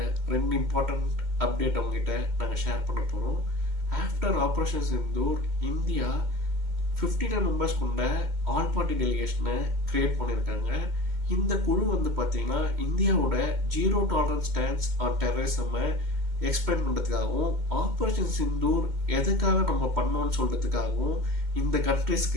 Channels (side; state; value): left; late; 2.1 ms